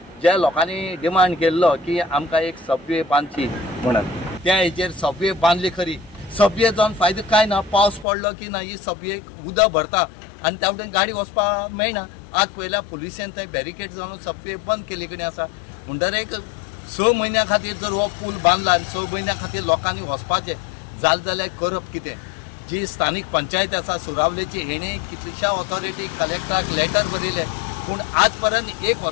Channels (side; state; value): right; drops out; at 8.1 s